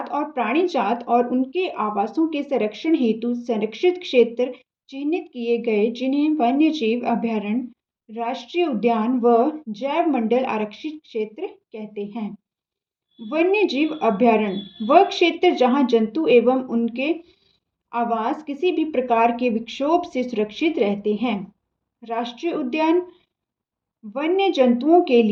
और प्राणी जात और उनके आवासों के संरक्षण हेतु संरक्षित क्षेत्र चिन्हित किए गए, जिन्हें वन्य जीव अभयारण्य, राष्ट्रीय उद्यान व जैव मंडल आरक्षित क्षेत्र कहते हैं। वन्य जीव अभयारण्य वह क्षेत्र जहां जंतु एवं उनके आवास किसी भी प्रकार के विक्षोभ से सुरक्षित रहते हैं। राष्ट्रीय उद्यान वन्य जंतुओं के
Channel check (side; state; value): both; identical; correlation 1.00